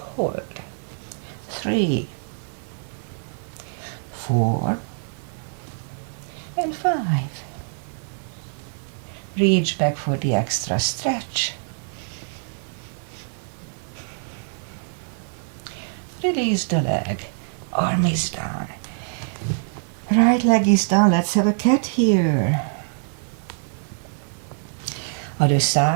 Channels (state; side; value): silent; left; digital silence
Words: 3, 4, and 5. Reach back for the extra stretch. Release the leg. Arm is down. Right leg is down. Let's have a cat here. Other